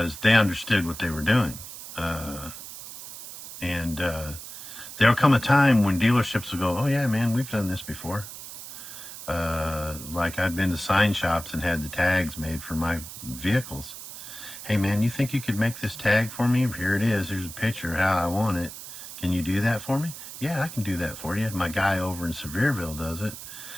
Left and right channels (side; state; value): right; noise; hiss, 12 dB below the sound